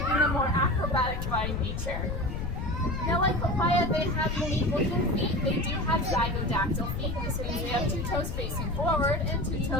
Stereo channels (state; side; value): noise; left; rumble, 4 dB below the sound